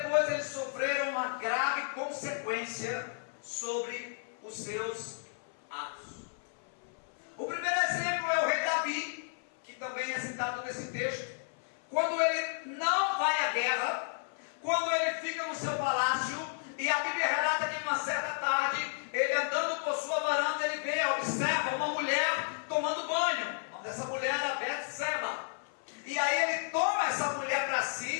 eles sofreram uma grave consequência sobre os seus atos. O primeiro exemplo é o rei Davi, que também é citado nesse texto. Quando ele não vai à guerra, quando ele fica no seu palácio, e a Bíblia relata que numa certa tarde, ele andando por sua varanda, ele vê, observa uma mulher tomando banho. O nome dessa mulher era Betseba. E aí ele toma essa mulher para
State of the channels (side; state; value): right; silent; 56 dB below the other